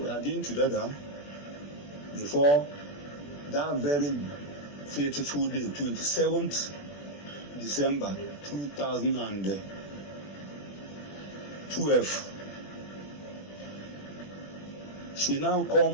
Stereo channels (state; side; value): late; right; 21 ms